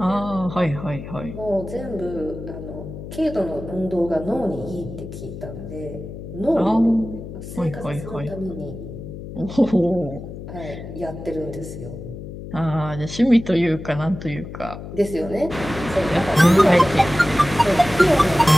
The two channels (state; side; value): noise; left; hum, 11 dB below the sound